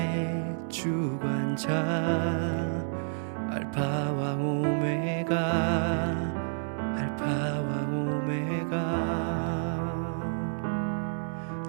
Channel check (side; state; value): left; silent; digital silence